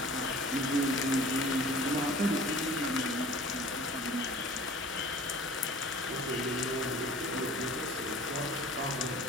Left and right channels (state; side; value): normal; both; correlation 0.45